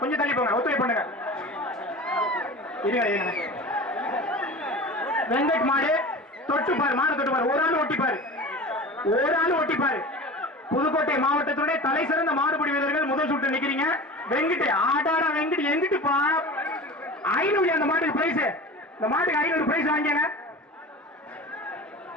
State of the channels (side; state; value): both; normal; correlation 0.34